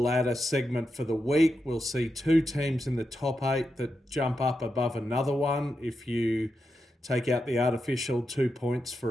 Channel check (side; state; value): both; normal; correlation 0.87